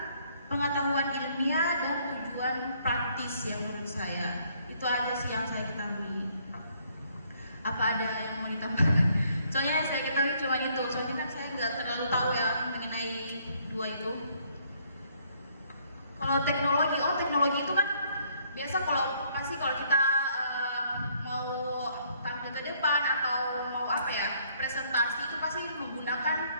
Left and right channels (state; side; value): inverted; both; correlation -0.66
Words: pengetahuan ilmiah dan tujuan praktis yang menurut saya. Itu aja sih yang saya ketahui. Apa ada yang mau ditambahkan? Soalnya yang saya ketahui cuma itu. Soalnya kan saya nggak terlalu tahu ya mengenai dua itu. Kalau teknologi itu kan biasa kalau kita mau tampil ke depan atau mau presentasi itu pasti menggunakan